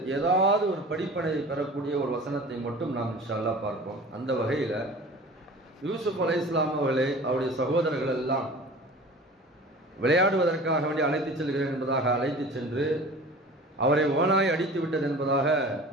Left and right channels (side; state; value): both; normal; correlation 0.40